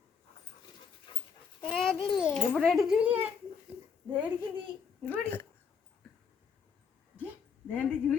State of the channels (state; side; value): quieter; right; 6.3 dB